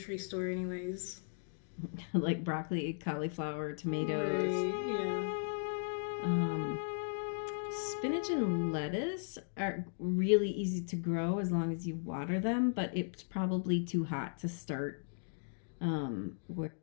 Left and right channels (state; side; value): silent; right; digital silence